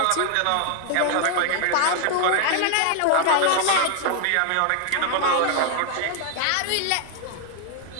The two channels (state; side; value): different; both; correlation 0.00